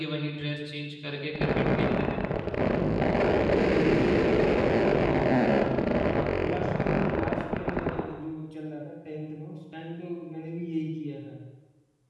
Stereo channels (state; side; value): identical; both; correlation 1.00